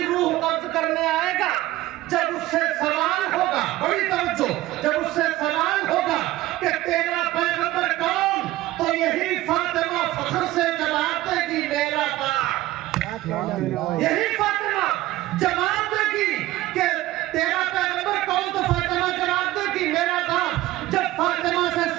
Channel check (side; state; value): left; quieter; 16.5 dB